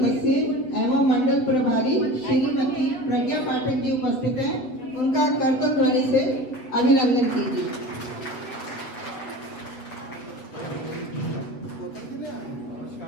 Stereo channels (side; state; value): right; late; 7.6 ms